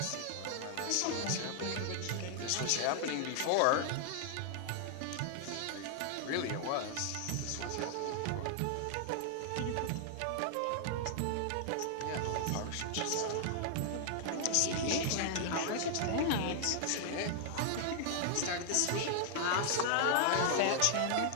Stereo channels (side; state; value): both; different; correlation 0.00